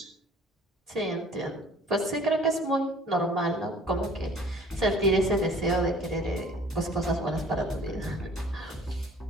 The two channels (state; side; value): normal; both; correlation 0.51